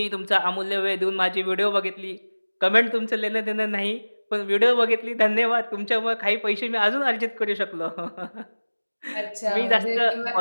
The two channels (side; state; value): both; inverted; correlation -1.00